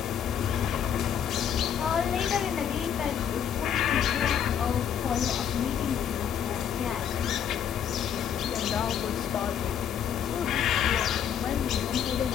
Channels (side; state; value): right; quieter; 8.7 dB